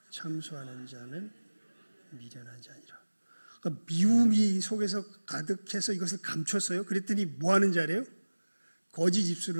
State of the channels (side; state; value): both; inverted; correlation -1.00